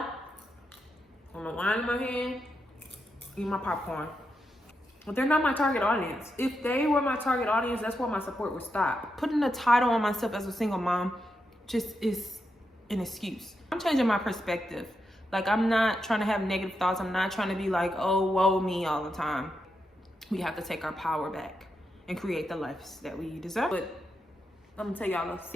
I'm going to wine in my hand, eat my popcorn. But they're not my target audience. If they were my target audience, that's where my support would stop. Putting a title on myself as a single mom just is an excuse. I'm changing my perspective. Like, I'm not trying to have negative thoughts. I'm not trying to be like, oh, woe me all the time. We have to take our power back and create the lives that we deserve. But I'm gonna tell y'all a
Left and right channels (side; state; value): both; normal; correlation 0.85